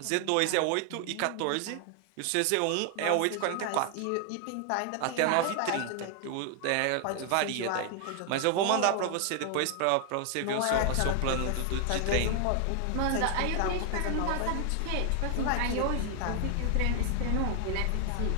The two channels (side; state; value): both; different; correlation 0.00